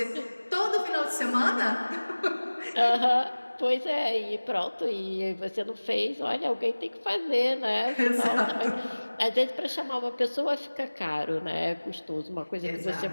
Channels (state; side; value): inverted; both; correlation -1.00